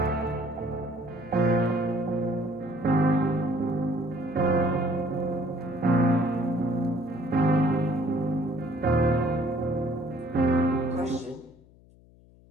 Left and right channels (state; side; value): noise; left; hum, 26 dB below the sound